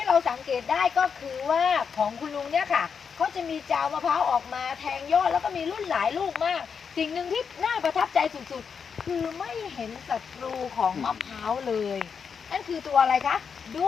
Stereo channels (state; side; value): quieter; right; 6.3 dB